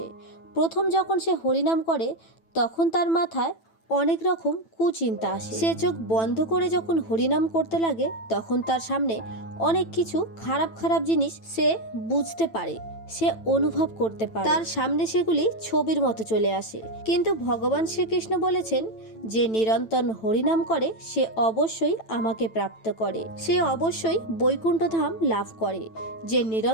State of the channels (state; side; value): late; right; 9.0 ms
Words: প্রথম যখন সে হরিনাম করে তখন তার মাথায় অনেক রকম কুচিন্তা আসে। সে চোখ বন্ধ করে যখন হরিনাম করতে লাগে তখন তার সামনে অনেক কিছু খারাপ খারাপ জিনিস সে বুঝতে পারে, সে অনুভব করতে পারে, তার সামনে সেগুলি ছবির মতো চলে আসে। কিন্তু ভগবান শ্রীকৃষ্ণ বলেছেন, যে নিরন্তর হরিনাম করে সে অবশ্যই আমাকে প্রাপ্ত করে, সে অবশ্যই বৈকুণ্ঠ ধাম লাভ করে। যে